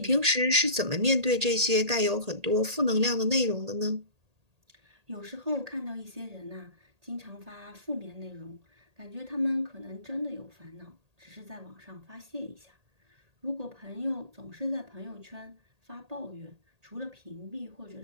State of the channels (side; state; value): left; late; 1.8 ms